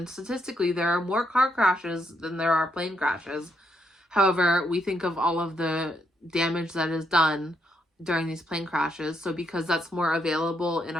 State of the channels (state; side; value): normal; both; correlation 0.77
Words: statistically there are more car crashes than there are plane crashes. However, we think of all of the damage that is done during these plane crashes. So because that's more available in